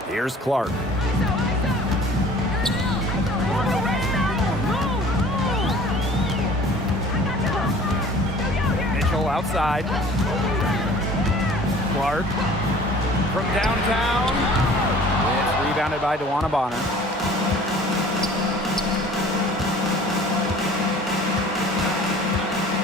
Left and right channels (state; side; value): normal; both; correlation 0.48